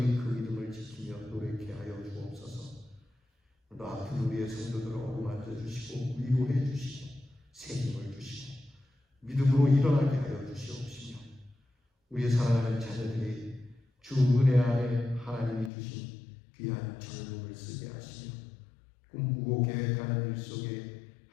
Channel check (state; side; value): drops out; right; at 15.7 s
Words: 그 믿음을 지키며 노력케 하여 주옵소서. 오늘도 아픈 우리의 성도들을 어루만져 주시고 위로해 주시고 책임을 주시고 믿음으로 일어나게 하여 주시옵시며 우리의 사랑하는 자녀들이 주 은혜 안에 하나님이 주신 귀한 젊음을 쓰게 하시며 꿈꾸고 계획하는 일 속에